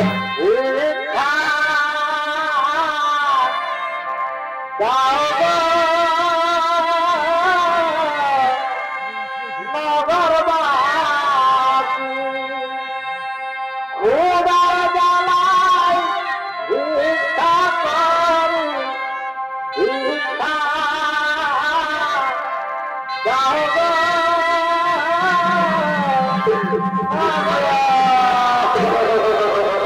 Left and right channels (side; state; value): both; identical; correlation 1.00